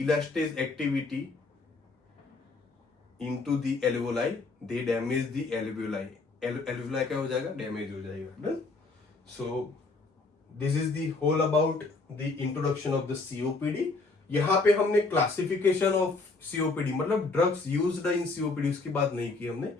activity into the alveoli, they damage the alveoli. Alveoli क्या हो जाएगा, डैमेज हो जाएगा। So this is the whole about the introduction of the COPD. यहाँ पे हमने क्लासिफिकेशन ऑफ सीओपीडी, मतलब ड्रग्स यूज्ड इन सीओपीडी, उसकी बात नहीं की हमने।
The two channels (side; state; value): right; quieter; 3.7 dB